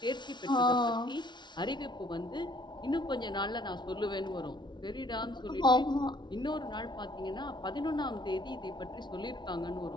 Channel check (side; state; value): right; late; 0.22 ms